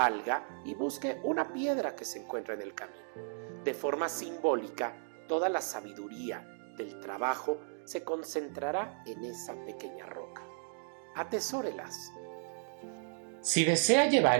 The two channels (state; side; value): silent; left; digital silence